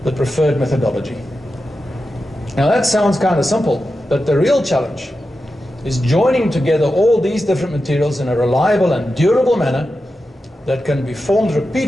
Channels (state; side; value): normal; both; correlation 0.91